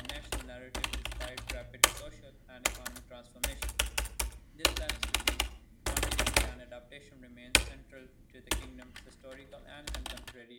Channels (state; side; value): identical; both; correlation 1.00